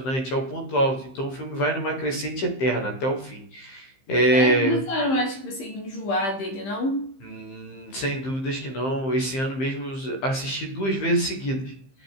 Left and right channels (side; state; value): right; late; 15 ms